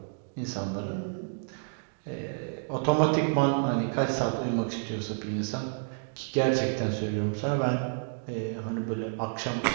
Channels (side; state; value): left; silent; digital silence